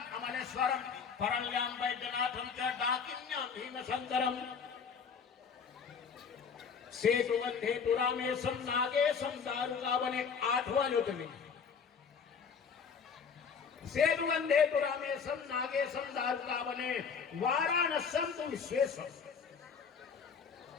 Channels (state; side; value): quieter; right; 6.1 dB